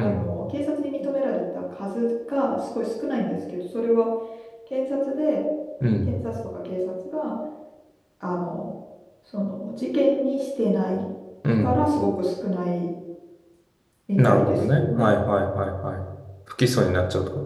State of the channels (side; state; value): both; identical; correlation 1.00